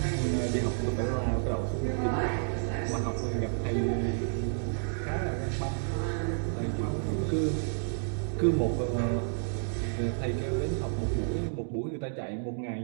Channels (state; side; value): silent; left; digital silence